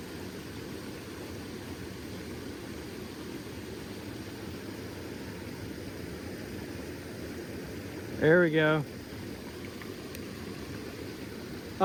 There we go.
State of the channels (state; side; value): identical; both; correlation 1.00